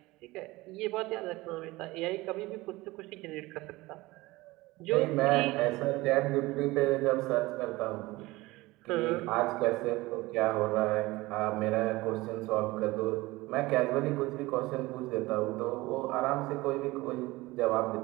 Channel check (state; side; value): quieter; left; 20.4 dB